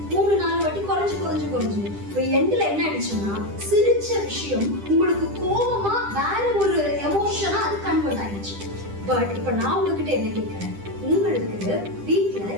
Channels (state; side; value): late; left; 10 ms